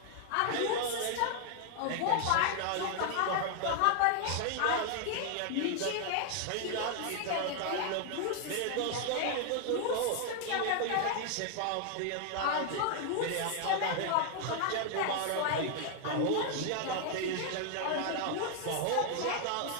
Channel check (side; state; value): both; different; correlation 0.00